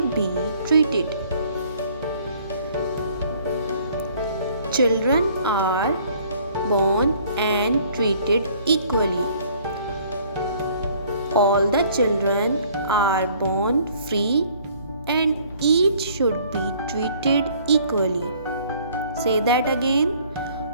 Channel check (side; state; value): both; inverted; correlation -0.58